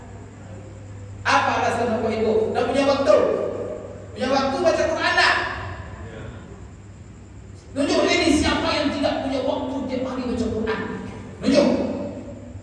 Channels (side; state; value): both; identical; correlation 1.00